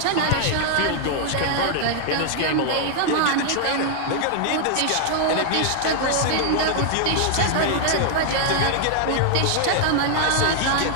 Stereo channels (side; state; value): both; different; correlation -0.01